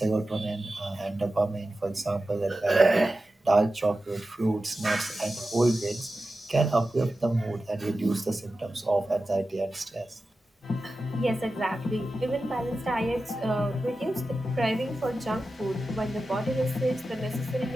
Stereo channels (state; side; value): normal; both; correlation 0.93